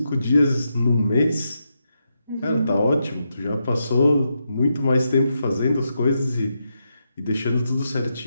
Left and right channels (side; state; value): both; inverted; correlation -0.84